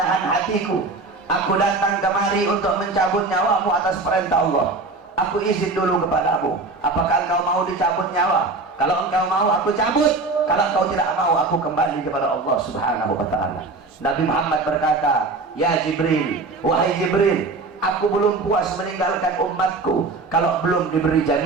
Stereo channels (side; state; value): left; quieter; 3.6 dB